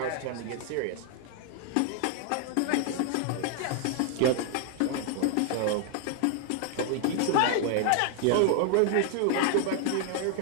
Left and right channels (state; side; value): different; both; correlation 0.00